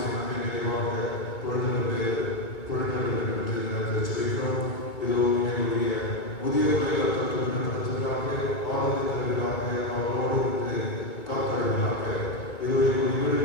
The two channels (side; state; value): right; late; 2.2 ms